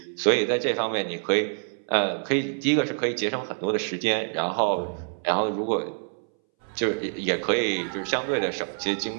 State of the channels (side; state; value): left; silent; 61 dB below the other